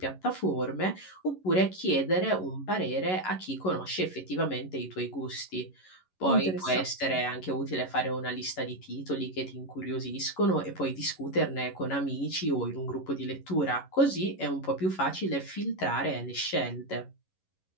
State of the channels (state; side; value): late; right; 11 ms